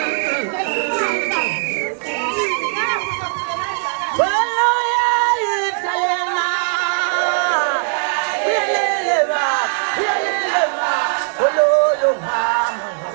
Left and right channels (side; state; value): left; silent; digital silence